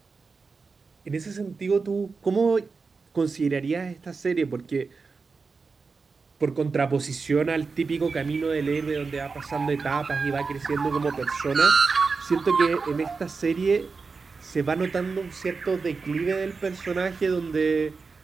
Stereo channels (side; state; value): left; quieter; 4.6 dB